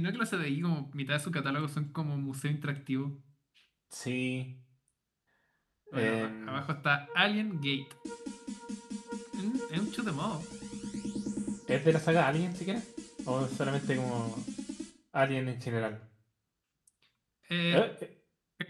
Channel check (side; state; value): both; identical; correlation 1.00